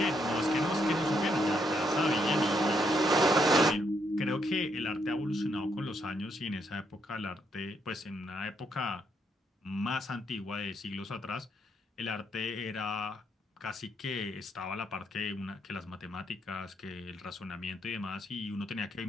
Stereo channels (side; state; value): both; normal; correlation 0.75